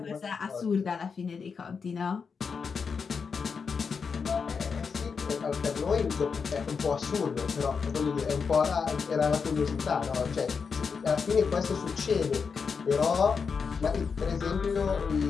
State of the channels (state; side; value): quieter; right; 5.6 dB